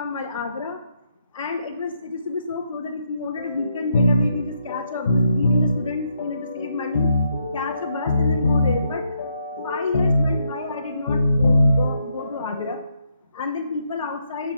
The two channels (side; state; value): both; inverted; correlation -0.78